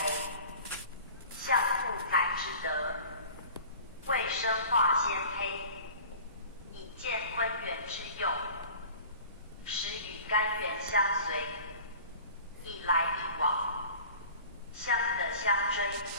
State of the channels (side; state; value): both; inverted; correlation -0.43